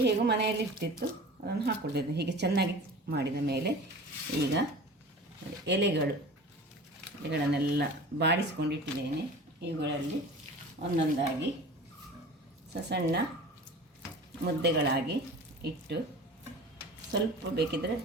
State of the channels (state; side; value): normal; both; correlation 0.39